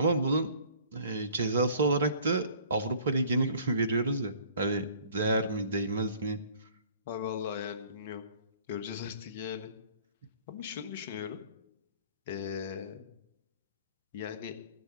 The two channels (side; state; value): both; inverted; correlation -0.52